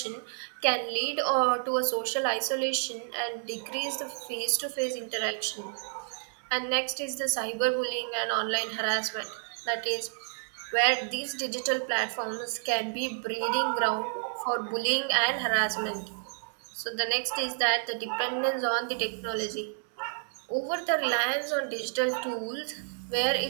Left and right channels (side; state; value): left; silent; 58 dB below the other